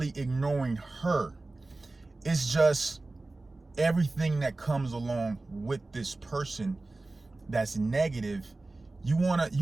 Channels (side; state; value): left; quieter; 3.2 dB